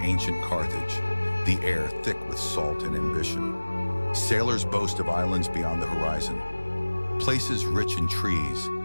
Carthage, the air thick with salt and ambition. Sailors boast of islands beyond the horizon, places rich in trees,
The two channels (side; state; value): both; inverted; correlation -1.00